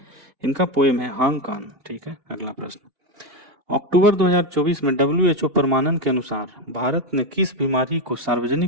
इनका पोएम है हांगकांग। ठीक है, अगला प्रश्न, अक्टूबर 2024 में WHO प्रमाणन के अनुसार भारत ने किस बीमारी को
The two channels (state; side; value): late; left; 2.8 ms